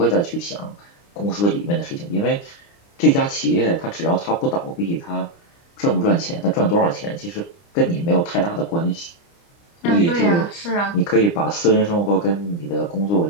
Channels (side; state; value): right; late; 29 ms